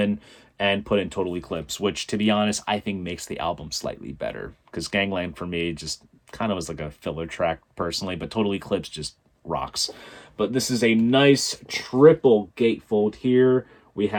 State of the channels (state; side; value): identical; both; correlation 1.00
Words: and put in Total Eclipse, which, to be honest, I think makes the album slightly better, because Gangland, for me, just kind of was like a filler track, personally, but Total Eclipse just rocks. But this is a nice triple gatefold here. We